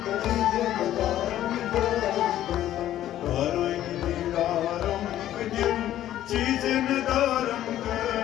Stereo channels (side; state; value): right; quieter; 12.6 dB